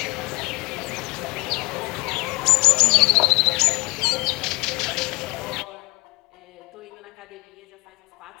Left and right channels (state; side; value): quieter; right; 23.8 dB